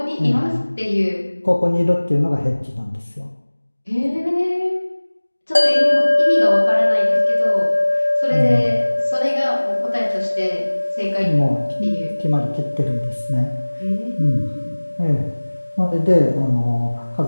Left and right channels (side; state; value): both; inverted; correlation -1.00